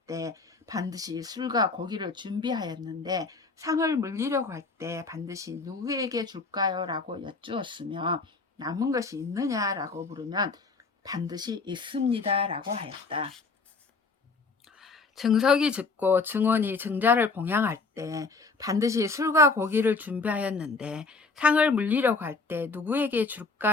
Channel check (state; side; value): quieter; right; 4.1 dB